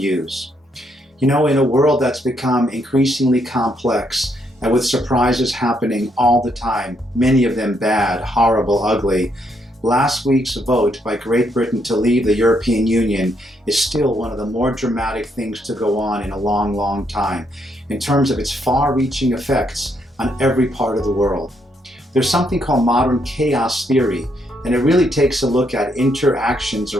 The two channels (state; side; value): normal; both; correlation 0.75